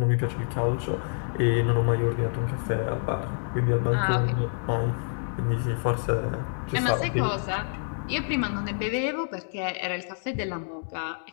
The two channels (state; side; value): silent; right; digital silence